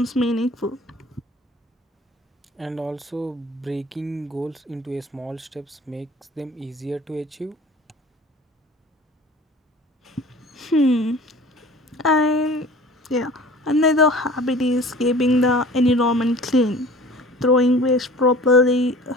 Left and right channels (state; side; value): normal; both; correlation 0.44